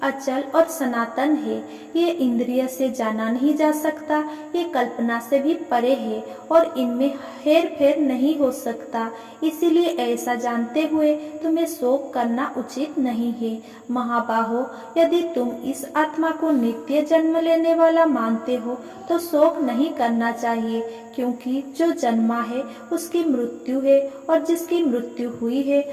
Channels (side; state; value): both; identical; correlation 1.00